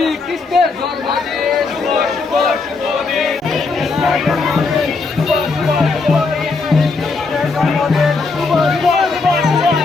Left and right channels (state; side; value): quieter; right; 4.1 dB